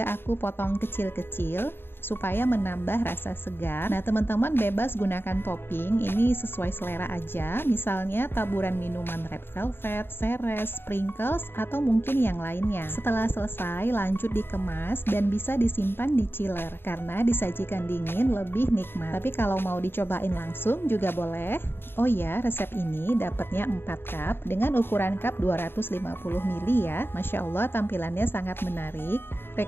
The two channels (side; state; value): right; late; 0.11 ms